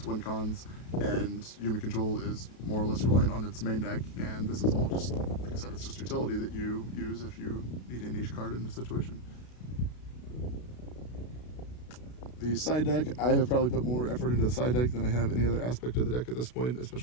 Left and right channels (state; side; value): late; right; 32 ms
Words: win cons, and Yumi Control is more or less reliant on its main deck, and this is all just, like I said, it's just utility that you use if you need a niche card in the situation. The side deck, I have probably put more effort into the side deck than I have any other aspect of the deck at this point,